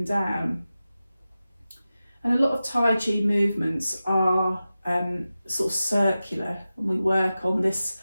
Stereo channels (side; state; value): both; inverted; correlation -0.94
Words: down. And a lot of Tai Chi movements are sort of circular, and we work on this